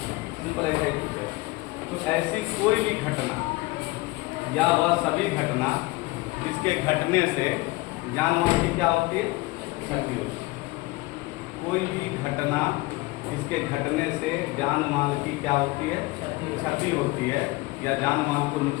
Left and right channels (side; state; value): right; quieter; 22.0 dB